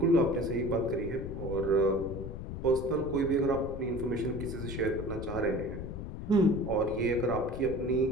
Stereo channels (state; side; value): noise; left; rumble, 7 dB below the sound